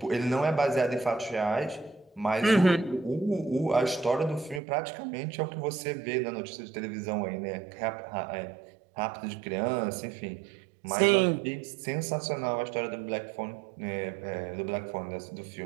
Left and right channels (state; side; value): drops out; left; at 4.6 s